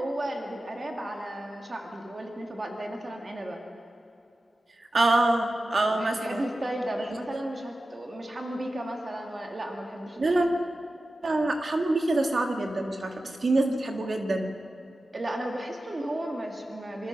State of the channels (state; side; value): normal; both; correlation 0.94